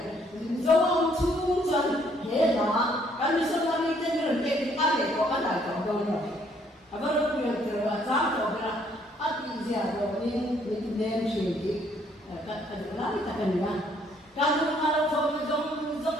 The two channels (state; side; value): normal; both; correlation 0.66